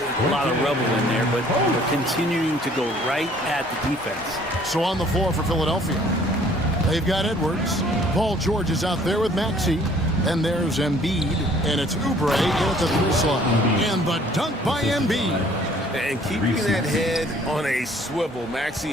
a lot of rubble in there, but they're continuing to go right at the defense. So on the floor for Philadelphia, they've got Edwards. Paul George is out there with Maxey. And there's Embiid, and it's Oubre in at the 3 slot. And the dunk by Embiid. And keeping that head on a swivel.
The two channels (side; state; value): both; normal; correlation 0.57